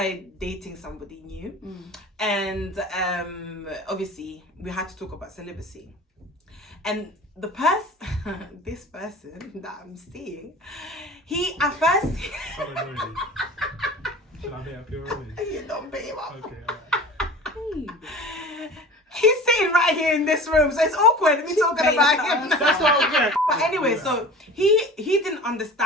dating somebody new, and obviously we had to talk about celibacy. And this person that I'm seeing, he at first. Should I beat up your rubbish? You don't beat him up. Okay, alright. He's sitting right here in this room, so it's awkward me talking about him. That's what I'm getting. But anyway, so he didn't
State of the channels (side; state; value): both; normal; correlation 0.39